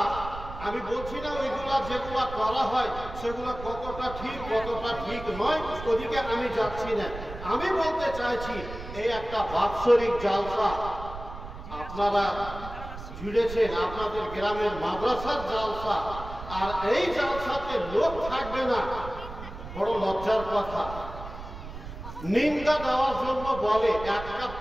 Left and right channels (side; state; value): right; noise; rumble, 11 dB below the sound